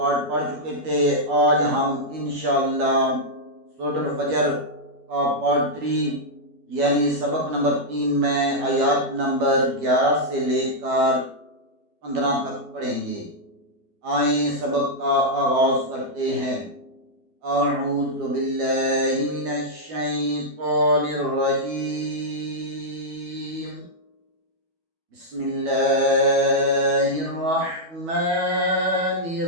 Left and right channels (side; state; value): left; late; 12 ms